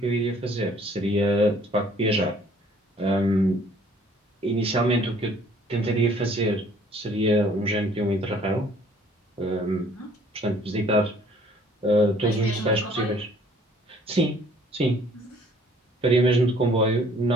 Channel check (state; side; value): normal; both; correlation 0.57